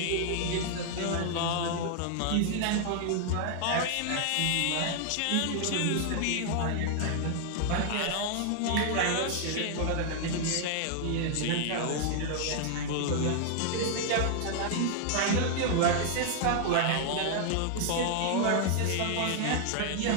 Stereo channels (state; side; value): different; both; correlation 0.00